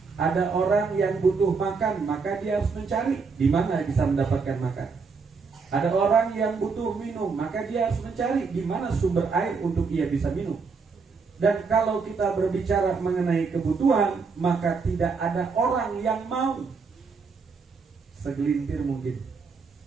Ada orang yang butuh makan, maka dia harus mencari di mana bisa mendapatkan makan. Ada orang yang butuh minum, maka dia harus mencari di mana sumber air untuk ia bisa minum. Dan kalau kita berbicara mengenai kebutuhan, maka tidak ada orang yang mau. Segelintir mungkin.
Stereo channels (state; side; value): quieter; left; 4.9 dB